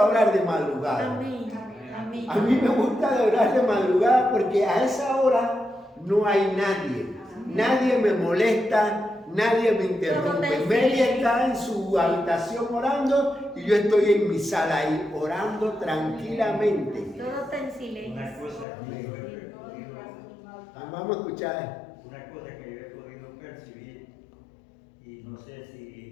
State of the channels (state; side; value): drops out; right; at 18.7 s